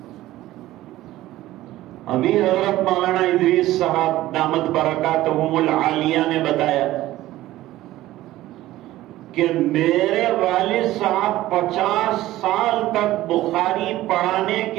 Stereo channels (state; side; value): quieter; left; 15.7 dB